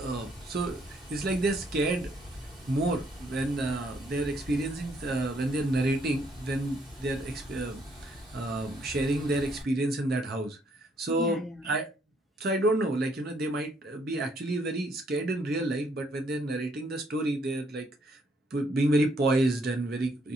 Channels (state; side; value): normal; both; correlation 0.69